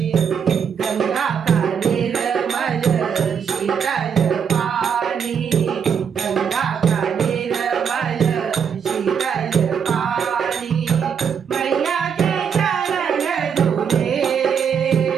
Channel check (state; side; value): quieter; left; 7.2 dB